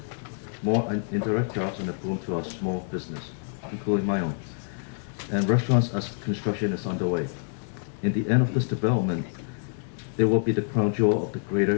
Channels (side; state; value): right; silent; 60 dB below the other